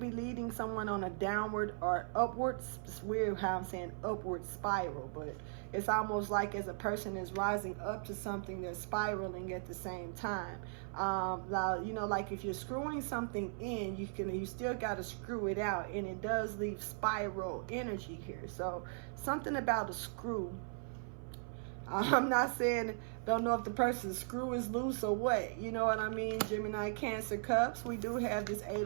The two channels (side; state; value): left; silent; 52 dB below the other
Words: leading someone on a downward or upwards. It's weird how I'm saying upward spiral, but it's almost like as a person is rising up to something, they're spiraling at the same time. Now, you know, like if you're screwing something in, you still got to screw it out, and it does leave spiral energy here. So something about a screw. I'm not saying, don't know if the person's screw is loose or what. You know what I mean? Gemini, Cancer, Cups. We do have this